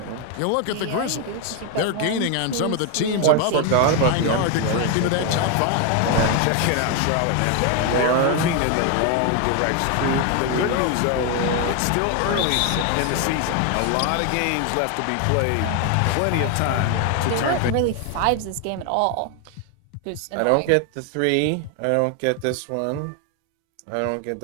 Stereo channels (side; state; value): both; different; correlation 0.01